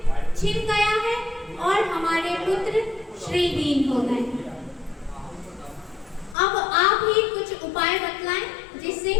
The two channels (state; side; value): drops out; right; at 6.4 s